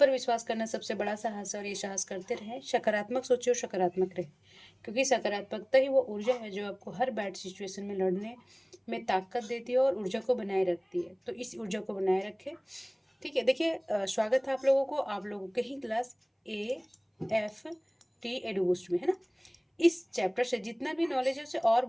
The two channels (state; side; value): identical; both; correlation 1.00